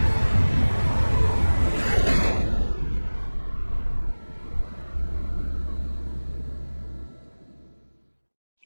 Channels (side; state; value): both; inverted; correlation -1.00